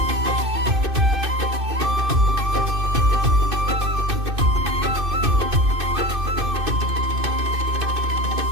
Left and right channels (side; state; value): left; late; 2.6 ms